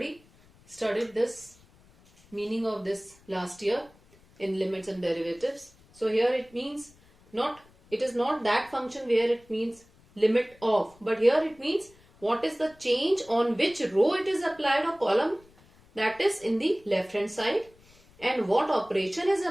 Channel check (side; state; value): left; noise; rumble, 28 dB below the sound